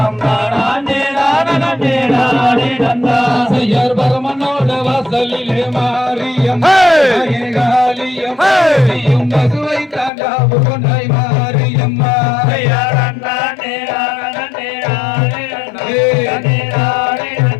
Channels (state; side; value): drops out; right; at 10.1 s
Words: செய்யர் பரமனோட வாசலிலே மாரியம் தாயே காளியம் நீயும் பசுவை தாண்டாவு கொண்டாய் மாரியம்மா